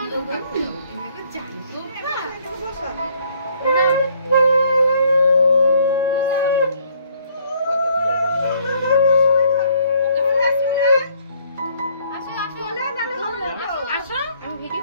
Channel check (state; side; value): inverted; both; correlation -0.63